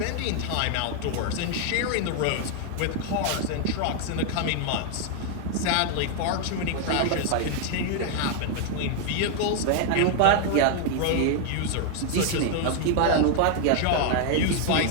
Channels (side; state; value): both; different; correlation 0.00